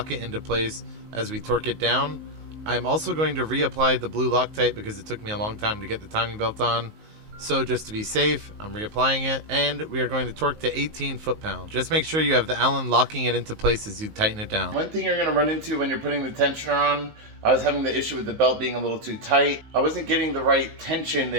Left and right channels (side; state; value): left; late; 19 ms